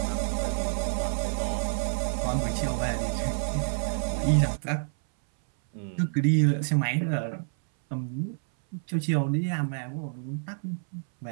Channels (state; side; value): silent; left; 59 dB below the other